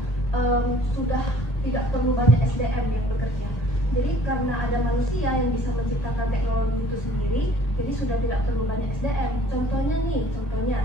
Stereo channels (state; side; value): late; right; 1.8 ms